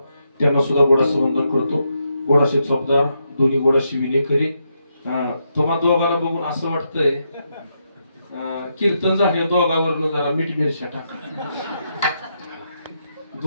त्यांना सुद्धा गोडाचं वंदन करतो. गोडाशे चोपदार, दोन्ही गोडाशे विलेखरी. तुम्हा दोघांना बघून असं वाटतंय कीर्तन झाले दोघांवरनं जरा मीठ मिरच्या टाका.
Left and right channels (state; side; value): inverted; both; correlation -0.81